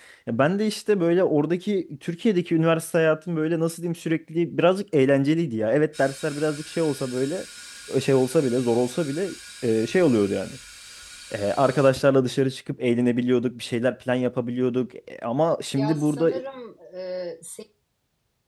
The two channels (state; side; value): identical; both; correlation 1.00